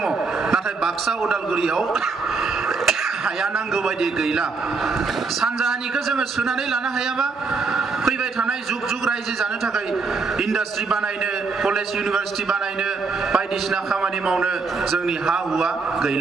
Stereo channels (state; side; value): quieter; left; 4.4 dB